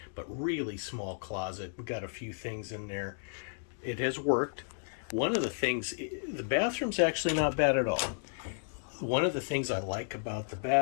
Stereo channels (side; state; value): right; silent; digital silence